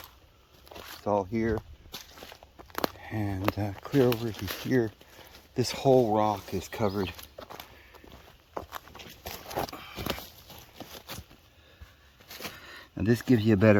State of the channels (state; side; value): identical; both; correlation 1.00